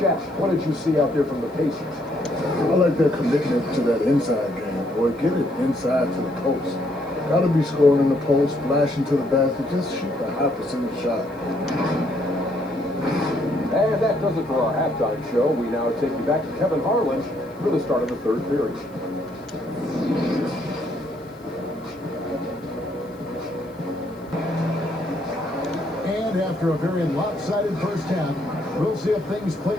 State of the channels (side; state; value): right; noise; hiss, 29 dB below the sound